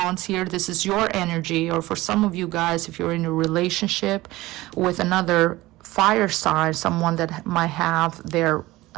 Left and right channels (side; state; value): left; quieter; 18.6 dB